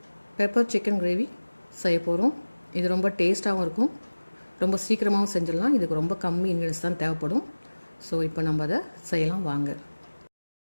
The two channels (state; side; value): inverted; both; correlation -1.00